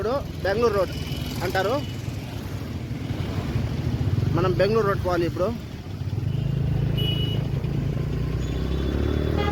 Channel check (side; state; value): both; identical; correlation 1.00